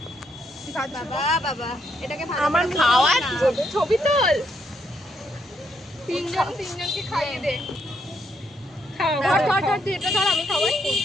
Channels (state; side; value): normal; both; correlation 0.75